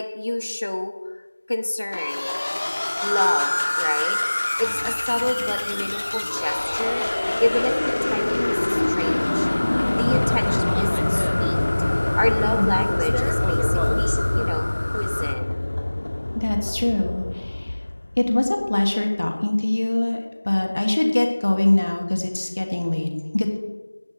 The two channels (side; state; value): both; inverted; correlation -1.00